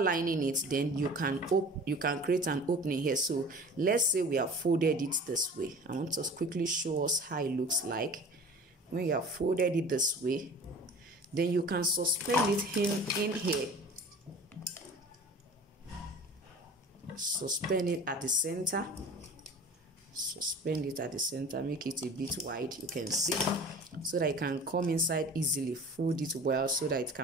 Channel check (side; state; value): both; normal; correlation 0.41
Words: it, then you can create an opening here. So let's say we have folded it this way. I want to quickly show us how it looks like. When you have folded it this way, then you can suspend it in here. Suspend it at the center. Suspend it at the center, make it a bit wide, you can see, so that it can come inside easily. Fold it well so that it